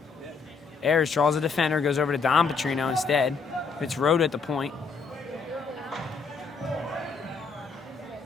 Ayers draws a defender, goes over to Don Petrino instead. It's Rhoda at the point.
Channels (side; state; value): right; quieter; 4.9 dB